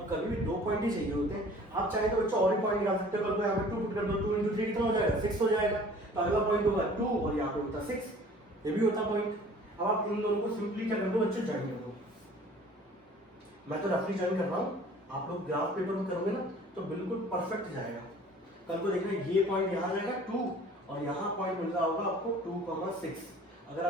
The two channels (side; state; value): both; normal; correlation 0.49